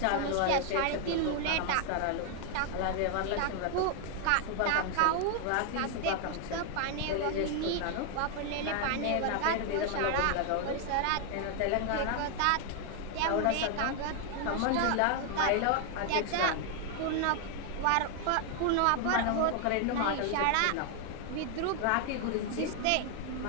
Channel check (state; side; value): different; both; correlation 0.00